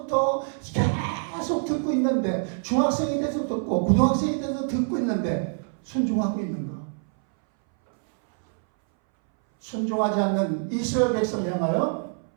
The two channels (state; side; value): silent; left; 60 dB below the other